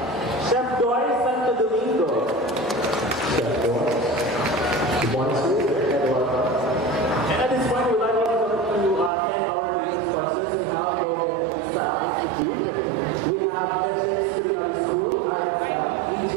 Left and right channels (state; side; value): drops out; left; at 9.1 s